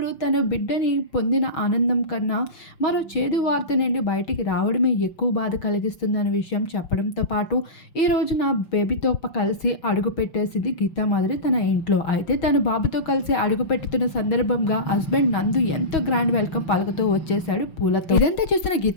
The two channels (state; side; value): late; right; 5.8 ms